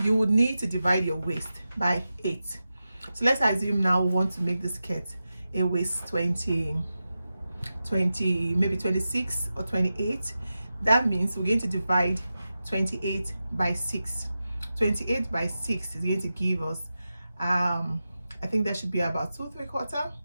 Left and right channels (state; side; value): inverted; both; correlation -0.92